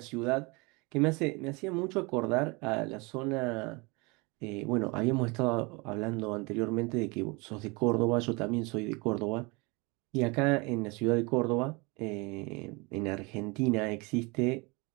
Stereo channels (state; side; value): quieter; left; 27.6 dB